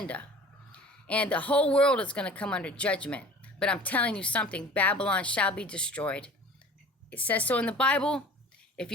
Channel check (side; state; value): both; normal; correlation 0.43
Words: And the whole world is going to come under judgment. But I'm telling you something. Babylon shall be destroyed. It says so in the Bible. If